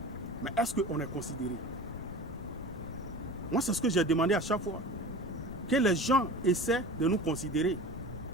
Mais est-ce qu'on est considéré? Moi, c'est ce que j'ai demandé à chaque fois. Que les gens essaient de nous considérer.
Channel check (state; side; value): noise; left; rumble, 16 dB below the sound